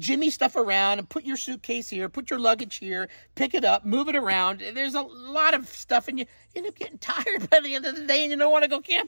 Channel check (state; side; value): inverted; both; correlation -1.00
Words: stuff around and put your suitcase here, put your luggage here, pick it up, move it around. There's a lot of stuff, and you end up getting tired by the end of the day, and you don't want to go